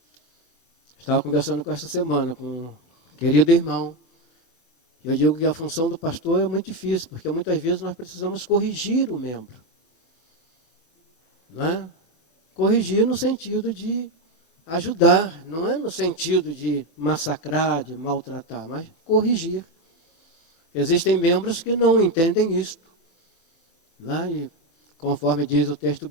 Estava conversando com essa semana com um querido irmão. Eu digo que a função do pastor é muito difícil, porque muitas vezes nós precisamos corrigir o membro. Não é? Corrigir no sentido de ajudar, não é no sentido de massacrar, de maltratar, mas corrigir. Existem membros que não entendem isto. Não é? E, conforme diz o texto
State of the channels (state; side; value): late; right; 24 ms